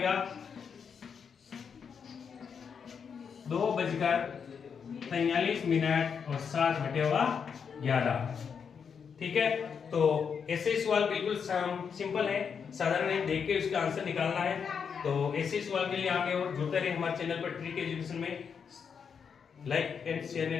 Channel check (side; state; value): right; quieter; 6.6 dB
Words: 2:43 मिनट और 7/11। ठीक है, तो ऐसे सवाल बिल्कुल सिंपल है, साधारण है, देख के उसका आंसर निकालना है। तो ऐसे सवाल के लिए आगे और जुड़ते रहे हमारे चैनल पर ट्रिक एजुकेशन में। Like and share